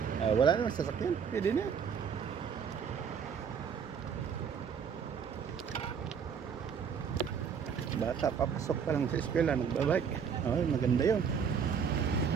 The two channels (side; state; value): left; quieter; 7.0 dB